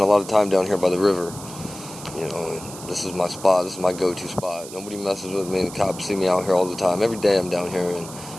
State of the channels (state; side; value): noise; right; hiss, 14 dB below the sound